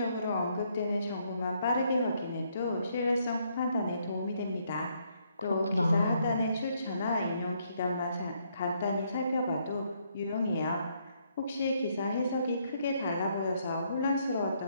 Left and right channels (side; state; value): both; inverted; correlation -0.72